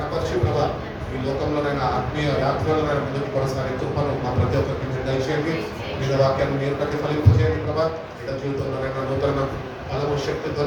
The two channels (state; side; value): identical; both; correlation 1.00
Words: ప్రభా ఈ లోకంలోనైనా ఆత్మీయ యాత్రలోనైనా ముందుకు కొనసాగే కృపను మా ప్రతి ఒక్కరికి మీరు దయచేయండి. మీద వాక్యాన్ని మీరు ప్రతిఫలింపజేయండి ప్రభా. బిడ్డ జీవితంలోనైనా నూతన బలము